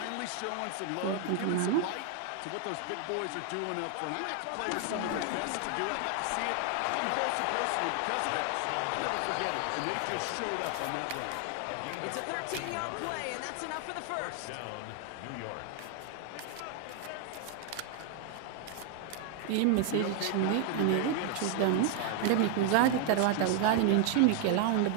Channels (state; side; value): different; both; correlation 0.00